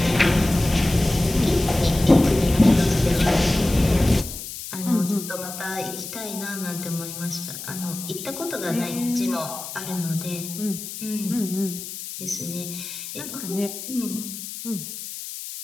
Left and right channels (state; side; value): noise; left; hiss, 9 dB below the sound